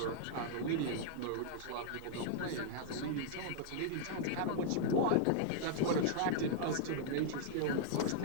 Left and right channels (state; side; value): different; both; correlation -0.01